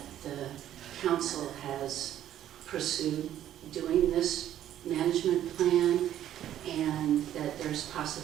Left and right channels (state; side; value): quieter; left; 11.6 dB